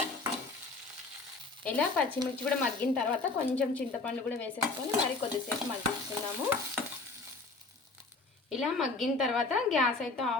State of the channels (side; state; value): right; quieter; 3.7 dB